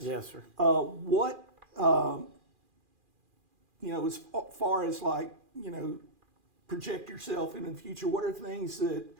Yes, sir. What as far as project yourself into the future, what are things that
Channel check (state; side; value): late; left; 2.4 ms